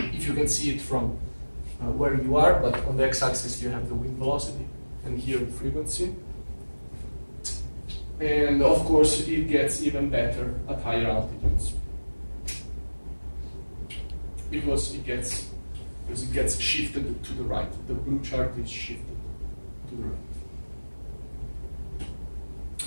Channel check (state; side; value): inverted; both; correlation -1.00